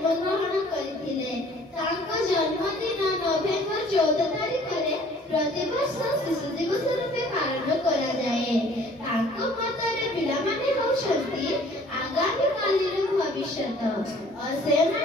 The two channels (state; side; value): normal; both; correlation 0.54